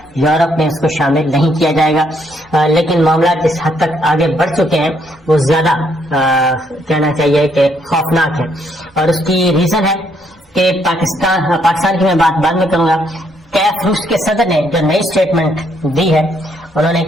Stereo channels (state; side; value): normal; both; correlation 0.72